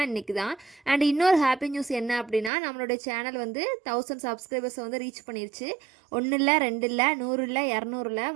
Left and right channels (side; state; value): left; drops out; at 2.5 s